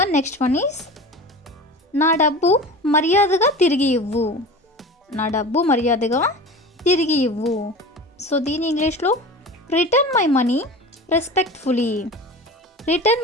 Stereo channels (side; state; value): both; normal; correlation 0.34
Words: నెక్స్ట్ వన్ ఈస్ నా డబ్బు మర్యాదగా తిరిగి ఇవ్వు. సో దీని ఇంగ్లీష్లో రిటర్న్ మై